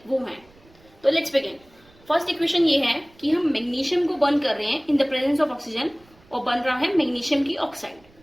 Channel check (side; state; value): right; noise; rumble, 29 dB below the sound